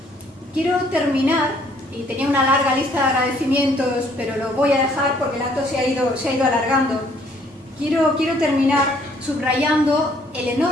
Quiero terminar, y tenía una larga lista de agradecimientos, pero lo voy a dejar porque el acto se ha ido alargando. Quiero terminar subrayando el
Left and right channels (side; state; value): both; normal; correlation 0.63